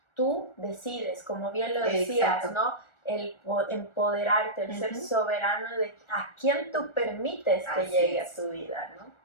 tú decides, como bien lo decías, exacto, ¿no? El empoderarte, el ser soberano de a quién tú permites que llegue a tu vida, ¿no?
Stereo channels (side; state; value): right; late; 1.4 ms